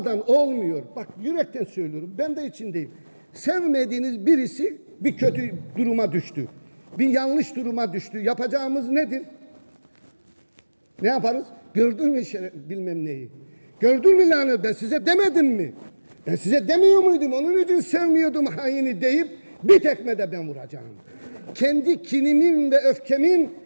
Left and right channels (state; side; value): inverted; both; correlation -1.00